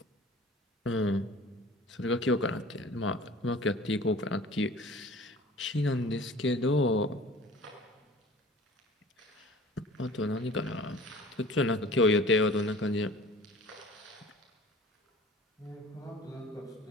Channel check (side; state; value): both; normal; correlation 0.44